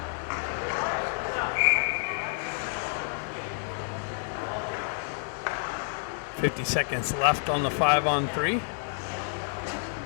.50 left on the 5-on-3.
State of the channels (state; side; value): silent; right; digital silence